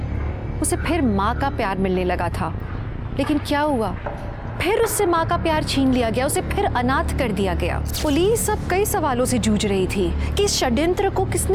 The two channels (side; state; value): both; identical; correlation 1.00